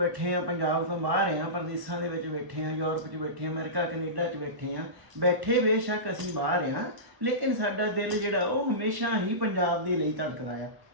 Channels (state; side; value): late; left; 1.1 ms